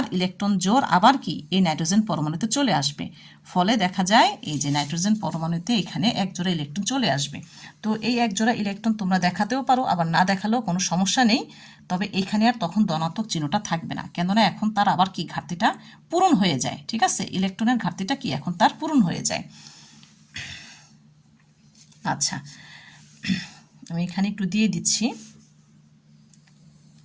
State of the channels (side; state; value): both; identical; correlation 1.00